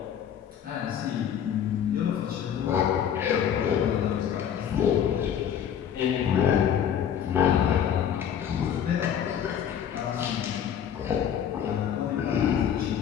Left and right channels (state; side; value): quieter; right; 9.0 dB